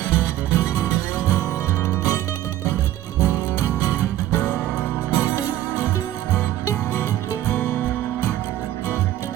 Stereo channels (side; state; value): left; quieter; 13.4 dB